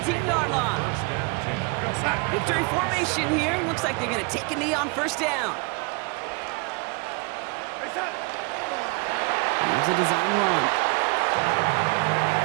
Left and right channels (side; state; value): left; quieter; 30.3 dB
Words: line. Victory formation here. Looks like they're going to take a knee on first down. Here's a design run.